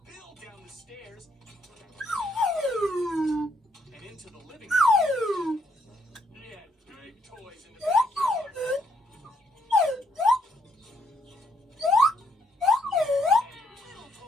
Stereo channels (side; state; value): both; normal; correlation 0.72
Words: down the stairs and into the living room. He had big toys in the backyard. Little